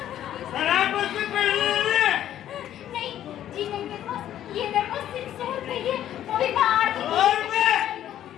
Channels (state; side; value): quieter; right; 11.6 dB